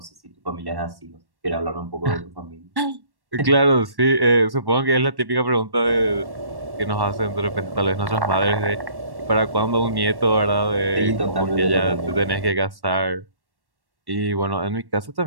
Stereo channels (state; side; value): late; left; 1.1 ms